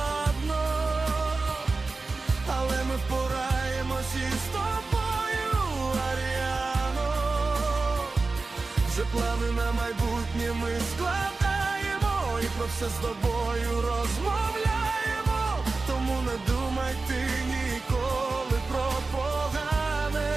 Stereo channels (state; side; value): quieter; left; 3.8 dB